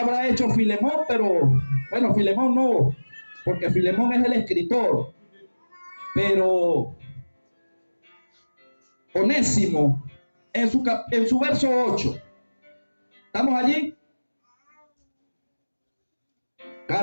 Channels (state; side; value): inverted; both; correlation -1.00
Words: hecho Filemón, pero bueno, Filemón no, porque Filemón es el escritor, pero Onésimo, en su verso 8, ¿estamos allí?